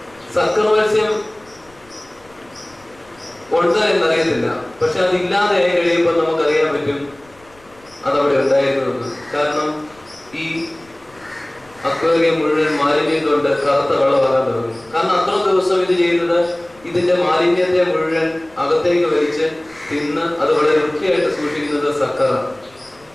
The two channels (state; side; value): noise; left; rumble, 29 dB below the sound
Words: സക്കർ മത്സ്യം ഉണ്ട് എന്നറിയത്തില്ല, പക്ഷെ അതില്ലാതെ ആയി കഴിയുമ്പോൾ നമുക്കറിയാൻ പറ്റും അതവിടെ ഉണ്ടായിരുന്നത്. കാരണം ഈ അക്വേറിയം മുഴുവൻ മാലിന്യം കൊണ്ട് കറുത്ത വെള്ളമാകാൻ തുടങ്ങും. കാരണം അത്ര ദിവസം ഇത് ചെയ്യുന്നത് ഇതിന്റെ മാലിന്യത്തെ മുഴുവൻ അകത്തേക്ക് വലിച്ച് തിന്ന് അത് വളരെ വൃത്തിയായിട്ട് സൂക്ഷിക്കുന്നത് സക്കറാണ്.